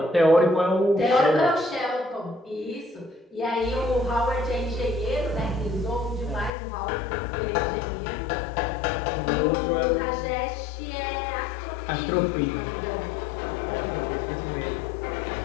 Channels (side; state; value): right; drops out; at 6.5 s